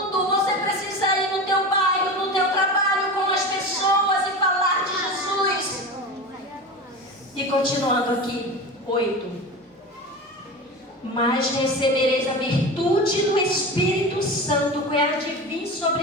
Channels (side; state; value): both; normal; correlation 0.28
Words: Você precisa continuando aqui, 8. Mas recebereis a virtude do Espírito Santo que há de vir